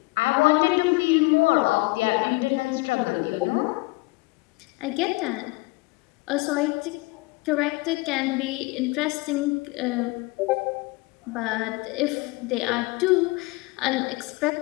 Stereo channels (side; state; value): right; quieter; 24.3 dB